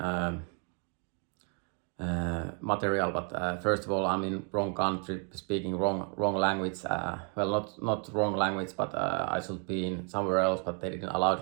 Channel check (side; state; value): left; quieter; 38.3 dB